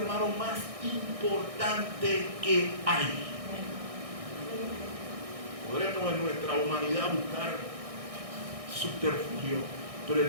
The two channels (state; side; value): late; left; 1.6 ms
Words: más importante que hay. Podremos en nuestra humanidad buscar subterfugio, pero